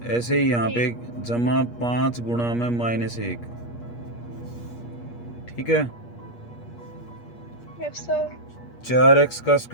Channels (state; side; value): late; right; 8.4 ms